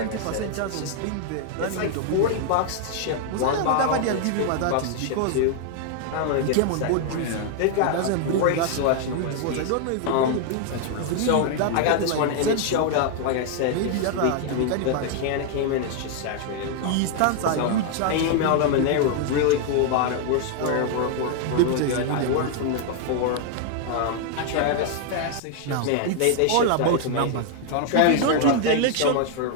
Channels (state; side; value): different; both; correlation 0.00